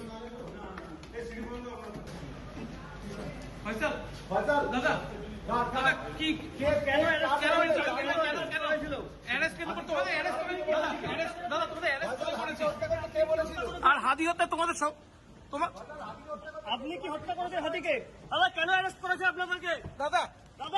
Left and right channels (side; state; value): both; identical; correlation 1.00